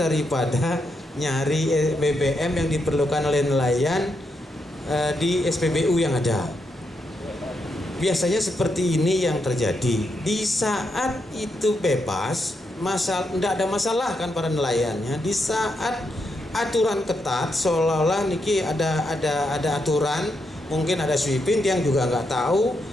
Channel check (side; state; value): both; normal; correlation 0.82